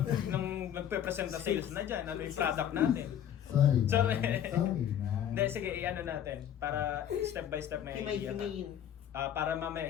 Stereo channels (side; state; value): right; quieter; 9.9 dB